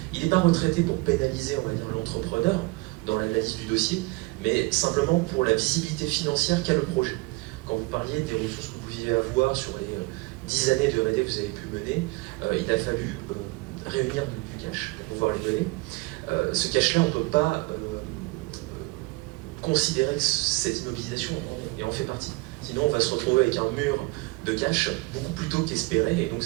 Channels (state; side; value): quieter; left; 24.5 dB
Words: Il n'est pas retraité pour pénaliser, on va dire, l'entrepreneur dans l'analyse du dossier, mais simplement pour la visibilité financière qu'a le projet. Quand vous parliez des ressources que vous pouviez avoir sur les 10 années de R&D que vous avez pu mener, il a fallu réunir du cash pour pouvoir les donner. Ce cash-là, on ne peut pas considérer que cette immobilisation en fait partie. Sinon, on va se retrouver avec un mur de cash beaucoup plus tôt qu'espéré, et donc